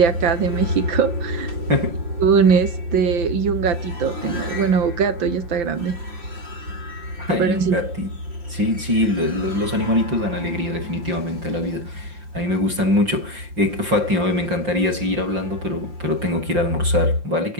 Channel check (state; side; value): late; left; 5.7 ms